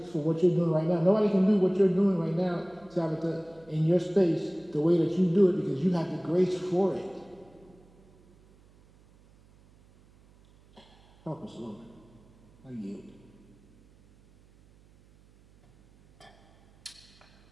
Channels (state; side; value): noise; right; hum, 29 dB below the sound